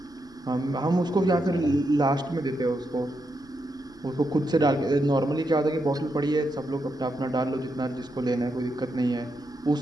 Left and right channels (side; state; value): left; noise; rumble, 28 dB below the sound